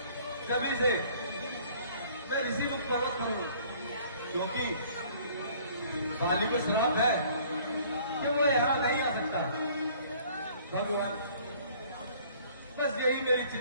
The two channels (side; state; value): both; inverted; correlation -0.55